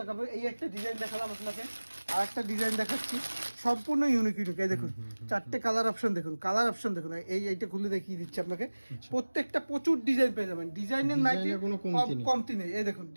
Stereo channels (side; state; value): both; inverted; correlation -1.00